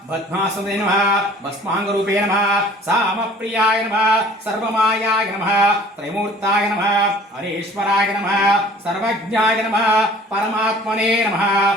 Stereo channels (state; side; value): normal; both; correlation 0.50